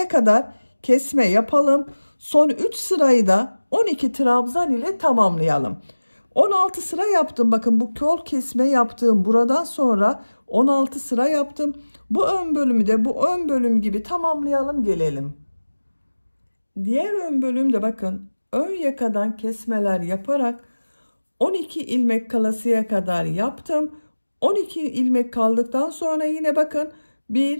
kadar kesme yapalım. Son 3 sırayı da 12 trabzan ile tamamlayalım. 16 sıra yaptım. Bakın bu kol kesme yaptığım buradan sonra 16 sıra yaptım. Bu ön bölümü de bu ön bölüm gibi tamamlayalım gelelim. Diğer ön bölümde bakın ön yakadan kesmeler yaparak 12 ilmek kalasıya kadar yaptım. 12 ilmek kaldıktan sonra yine bakın 1,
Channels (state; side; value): inverted; both; correlation -1.00